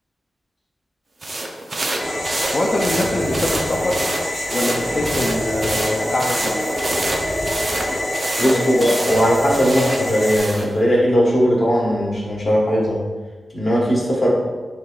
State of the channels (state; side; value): normal; both; correlation 0.92